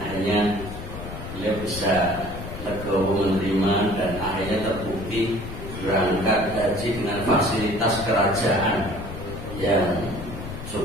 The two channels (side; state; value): left; noise; rumble, 10 dB below the sound